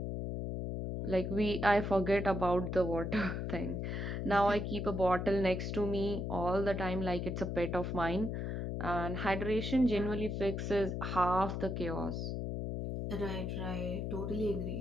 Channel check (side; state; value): left; noise; hum, 3 dB below the sound